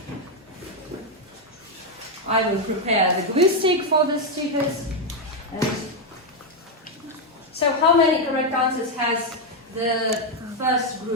I will prepare the glue stick for the stickers. And so how many correct answers has the first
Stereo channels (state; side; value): normal; both; correlation 0.03